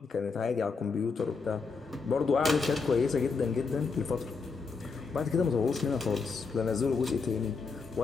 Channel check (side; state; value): right; quieter; 4.8 dB